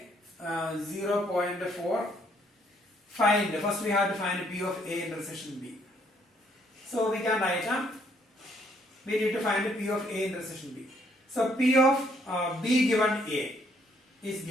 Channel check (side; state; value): both; normal; correlation 0.69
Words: 0.4. Find, first we have to find P of A intersection B. So we can write we need to find P of A intersection B. So P of B given A is